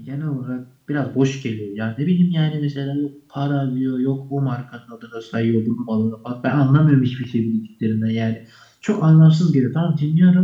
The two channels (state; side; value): identical; both; correlation 1.00